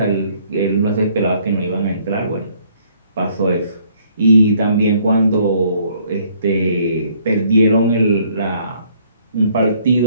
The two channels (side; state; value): both; inverted; correlation -0.64